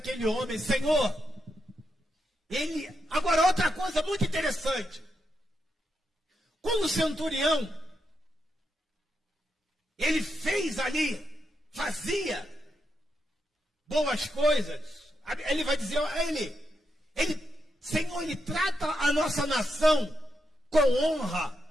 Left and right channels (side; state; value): both; normal; correlation 0.83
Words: homem. Senhor, ele... Agora, outra coisa muito interessante. Quando o centurião, ele fez ali, fazia boas coisas, ele vai dizer, ele Senhor, Ele trata a nossa nação com honra.